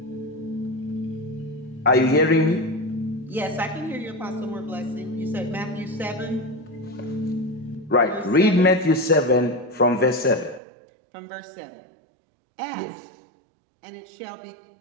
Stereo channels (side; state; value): left; drops out; at 10.6 s